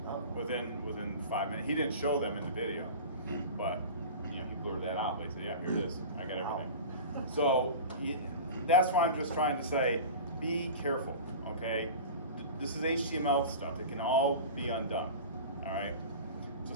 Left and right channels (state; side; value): inverted; both; correlation -0.33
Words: Within 5 minutes. He didn't show them in the video, but he blurred that out. He said, "Yeah, here it is. I got everything." So that's why I'm just trying to say, be careful. Okay, this is HTML stuff. It can all be undone. All right. So